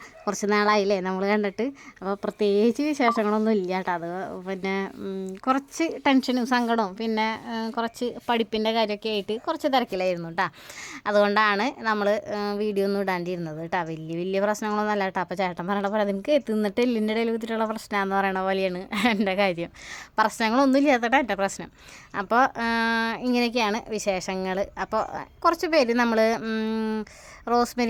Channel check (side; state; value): both; identical; correlation 1.00